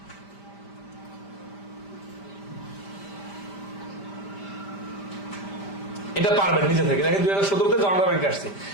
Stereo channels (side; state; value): right; late; 5.1 ms